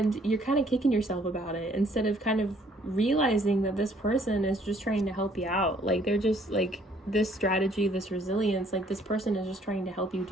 you're kind of kicking yourself about it instead of kind of realizing that this person is just trying to help you out. Like they're just like this strategy, this resilience, like this person is just trying to help you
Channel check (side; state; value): both; normal; correlation 0.62